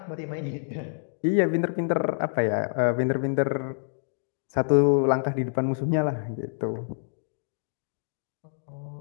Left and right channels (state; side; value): silent; right; digital silence